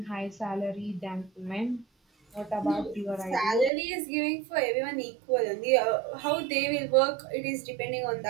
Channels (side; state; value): left; drops out; at 3.7 s